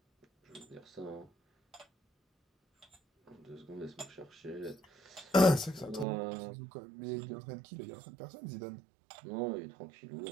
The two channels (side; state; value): left; drops out; at 6.1 s